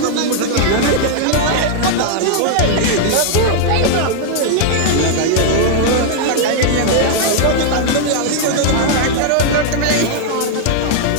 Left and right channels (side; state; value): both; different; correlation -0.01